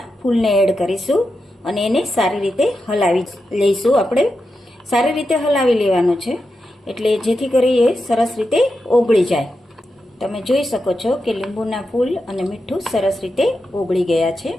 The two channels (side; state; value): both; normal; correlation 0.88